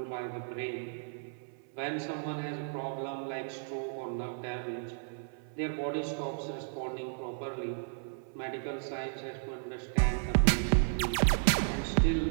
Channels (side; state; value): left; silent; 55 dB below the other